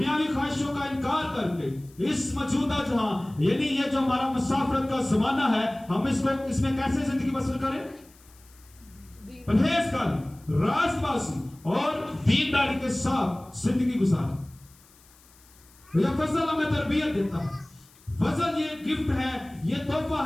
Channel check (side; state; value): left; noise; hiss, 27 dB below the sound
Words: خواہشوں کا انکار کر کے اس موجودہ جہاں یعنی یہ جو ہمارا مسافرت کا زمانہ ہے ہم اس میں کیسے زندگی بسر کریں؟ پرہیزگاری، راست بازی اور دینداری کے ساتھ زندگی گزاریں. یہ فضل ہمیں تربیت دیتا ہے. فضل یہ گفٹ ہے، یہ تحفہ